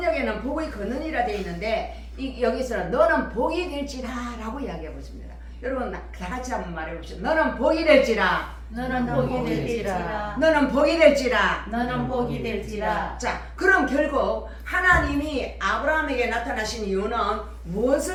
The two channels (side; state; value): both; identical; correlation 1.00